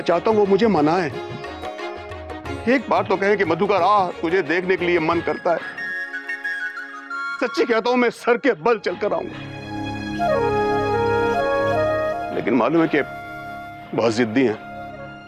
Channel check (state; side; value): identical; both; correlation 1.00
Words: चाहता हूं वो मुझे मनाए। एक बार तो कहें कि मधुकर आ, तुझे देखने के लिए मन करता है। सच्ची कहता हूं मैं सर के बल चलकर आऊंगा। लेकिन मालूम है कि बहुत जिद्दी हैं